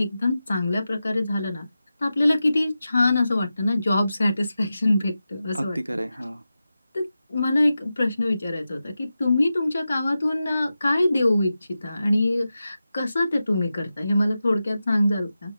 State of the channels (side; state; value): both; inverted; correlation -0.92